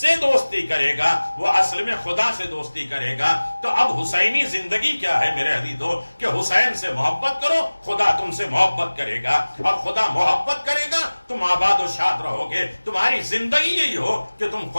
دوستی کرے گا وہ اصل میں خدا سے دوستی کرے گا۔ تو اب حسینی زندگی کیا ہے میرے عزیزو، کہ حسین سے محبت کرو، خدا تم سے محبت کرے گا، اور خدا محبت کرے گا تم آباد و شاد رہو گے۔ تمہاری زندگی یہی ہو کہ تم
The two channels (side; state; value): both; inverted; correlation -1.00